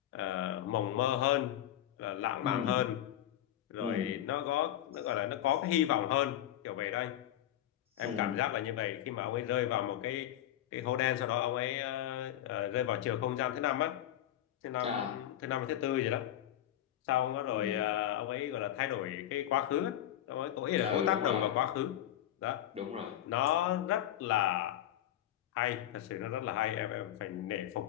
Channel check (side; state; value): right; quieter; 12.3 dB